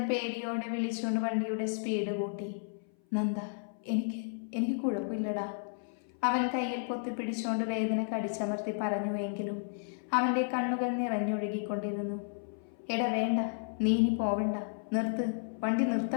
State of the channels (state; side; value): silent; right; 56 dB below the other